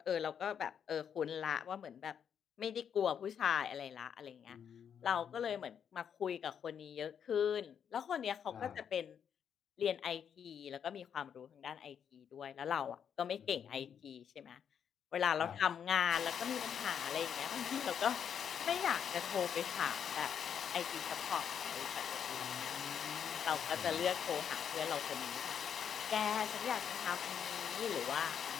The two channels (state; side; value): quieter; right; 8.0 dB